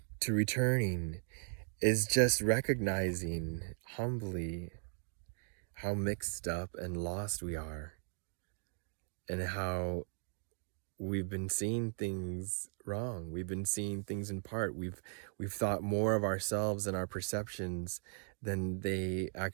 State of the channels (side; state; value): left; silent; digital silence